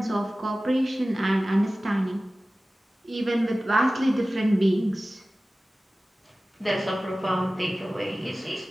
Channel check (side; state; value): both; normal; correlation 0.97